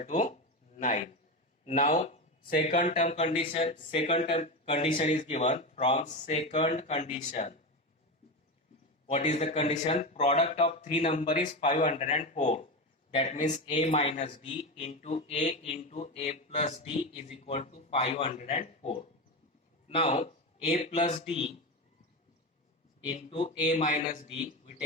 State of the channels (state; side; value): normal; both; correlation 0.19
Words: to 9. Now second term condition is given. From second condition, what is the condition? Product of three number is 504. That means a minus d into a plus d is equal to 504. Now a plus d into a minus d, we